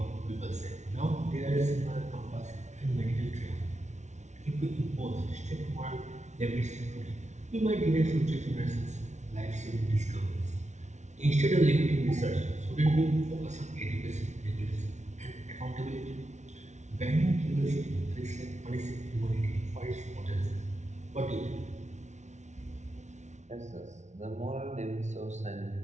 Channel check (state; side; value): late; left; 0.33 ms